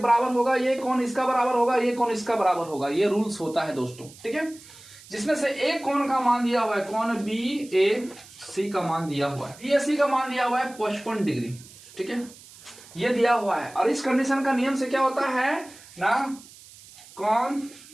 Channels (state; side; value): noise; right; hiss, 21 dB below the sound